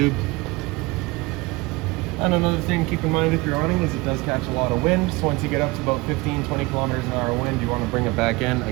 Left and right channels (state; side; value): quieter; left; 23.4 dB